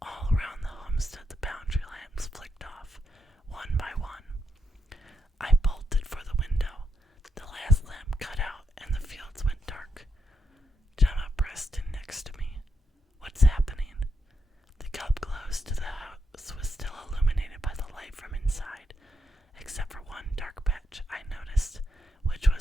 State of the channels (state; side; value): normal; both; correlation 0.82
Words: All around the homestead the boundary lamps flicked off, one by one. I bolted for the window. The last lamp cut out and the fields went dark. Gemma pressed in next to me. What's happening? The cup close to the house was still illuminated by the light from inside, except for one dark patch I noticed, which